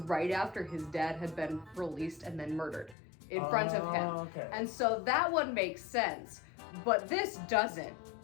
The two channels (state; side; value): drops out; right; at 3.0 s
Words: after his dad had been released and then murdered in front of him. Okay. And so that one makes sense, but this doesn't.